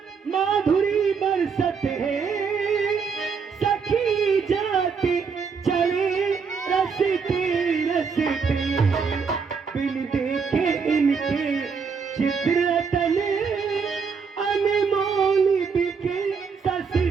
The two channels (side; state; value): left; quieter; 5.7 dB